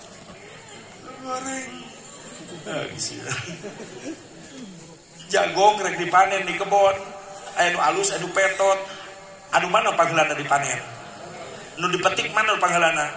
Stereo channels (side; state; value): both; identical; correlation 1.00